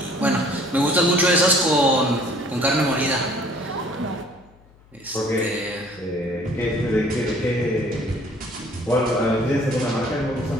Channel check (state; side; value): noise; left; hum, 28 dB below the sound